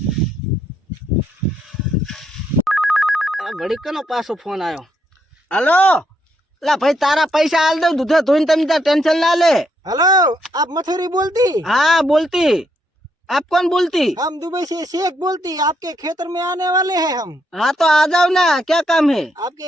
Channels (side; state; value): both; normal; correlation 0.76